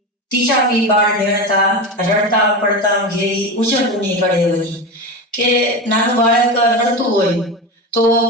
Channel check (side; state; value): both; normal; correlation 0.22